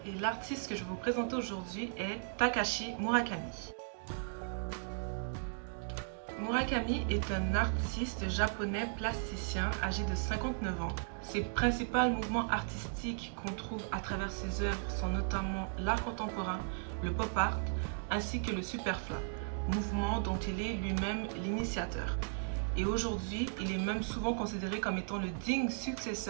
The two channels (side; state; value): left; silent; digital silence